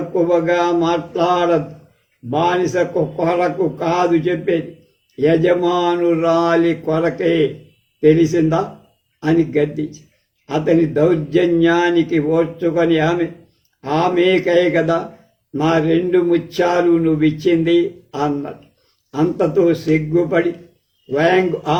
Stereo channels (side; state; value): both; identical; correlation 1.00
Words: మాట్లాడదు, బానిసకు కొరకు కాదు చెప్పేది, యజమానురాలి కొరకే తెలిసిందా అని గద్దించి అతని దౌర్జన్యానికి ఓర్చుకొని ఆమెకై కదా నా 2 ముత్యాలు నువ్విచ్చింది అన్నది. అంతతో సిగ్గుపడి వ్యాంగ్